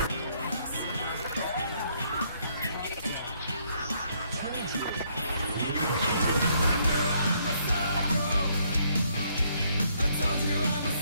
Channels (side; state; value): both; inverted; correlation -0.69